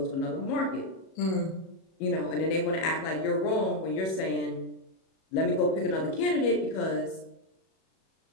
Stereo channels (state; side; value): late; right; 37 ms